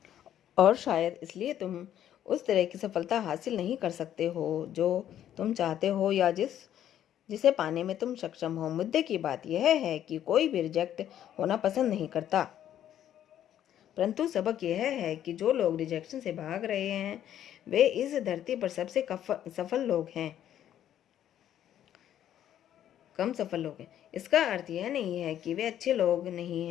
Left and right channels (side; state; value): right; quieter; 11.0 dB